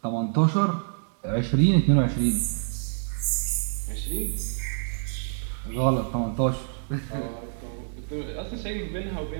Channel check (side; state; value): left; silent; digital silence